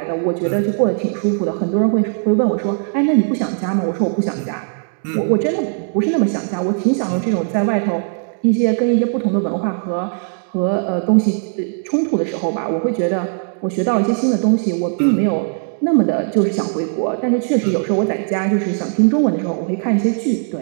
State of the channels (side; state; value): left; silent; 59 dB below the other